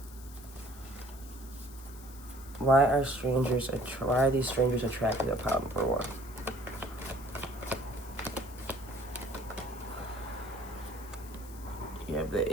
Why are these strangers attracted to pile number 1? You have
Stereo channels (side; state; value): left; noise; hiss, 19 dB below the sound